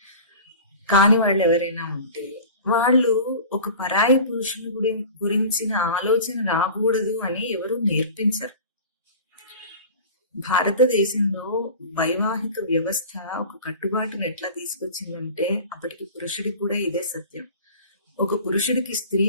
కాని వాళ్ళు ఎవరైనా ఉంటే వాళ్ళు ఒక పరాయి పురుషుని గురించిన ఆలోచన రాకూడదు అని ఎవరు నేర్పించరు. భారతదేశంలో వైవాహిక వ్యవస్థ ఒక కట్టుబాటును ఎట్లా తీసుకొచ్చిందంటే, అప్పటికి పురుషుడికి కూడా ఇదే సత్యం. ఒక పురుషుడికి స్త్రీ,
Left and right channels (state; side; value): inverted; both; correlation -0.38